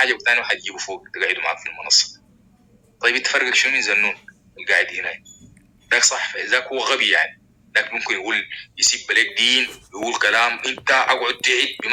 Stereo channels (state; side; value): identical; both; correlation 1.00